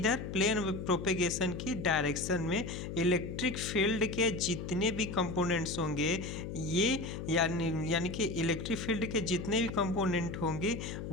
प्लेन प्रोपेगेशन की डायरेक्शन में। इलेक्ट्रिक फील्ड के जितने भी कंपोनेंट्स होंगे ये यानी कि इलेक्ट्रिक फील्ड के जितने भी कंपोनेंट होंगे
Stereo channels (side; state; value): left; noise; hum, 7 dB below the sound